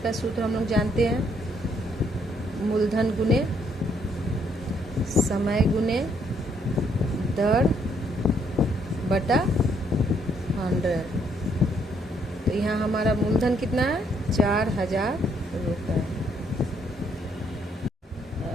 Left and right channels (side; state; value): both; normal; correlation 0.70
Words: सूत्र हम लोग जानते हैं, मूलधन गुने समय गुने दर बटा 100। तो यहाँ हमारा मूलधन कितना है? 4000 रुपये।